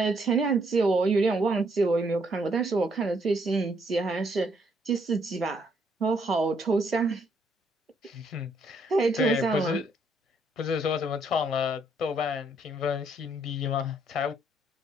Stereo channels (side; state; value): both; normal; correlation 0.70